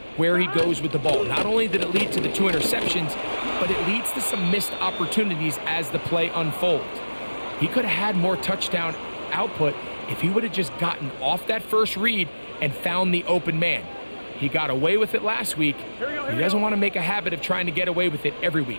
where he goes with the ball. Not only did it lead to the 2 interceptions, but it leads to some missed opportunities as the play unfolds. He could have had more touchdown output if he would have just gotten off that first read and found the open man. He got away with it last week. He doesn't want to make a habit of trying to get away with it every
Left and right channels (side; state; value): both; inverted; correlation -1.00